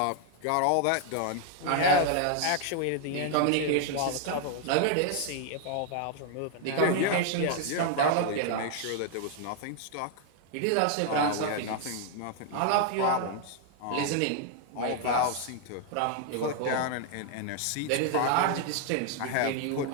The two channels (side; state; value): both; different; correlation 0.00